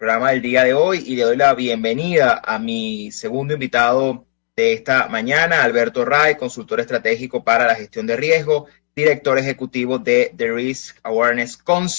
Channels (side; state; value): right; silent; digital silence